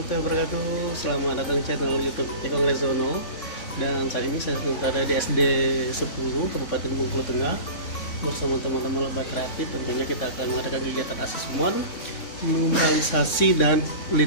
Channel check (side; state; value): right; late; 3.6 ms